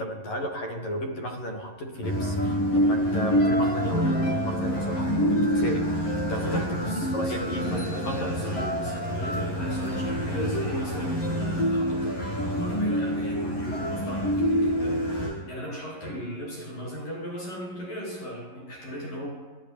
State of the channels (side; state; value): right; late; 11 ms